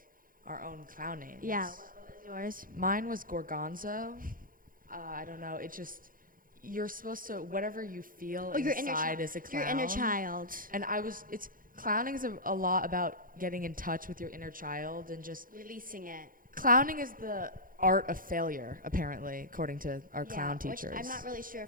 our own clown names. Yeah, what was yours? Mine was Gorgonzo. I don't know. It just, you're supposed to, whatever you feel inside is a clown. Your inner child. And clowning is a lot about getting in touch with your inner child and just Releasing it. Clowning is the art of failure, apparently, according to our clown teachers. Which I'm not really sure if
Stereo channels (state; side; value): late; left; 0.40 ms